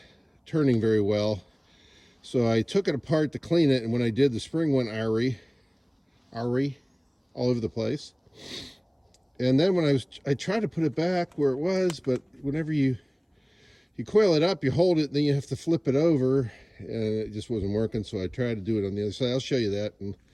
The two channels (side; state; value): both; identical; correlation 1.00